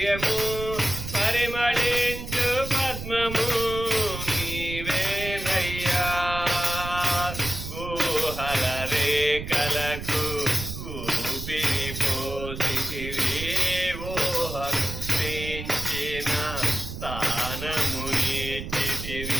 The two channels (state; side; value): noise; right; rumble, 8 dB below the sound